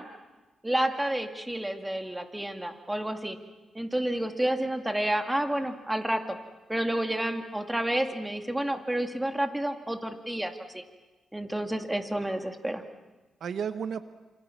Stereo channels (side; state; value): both; normal; correlation 0.97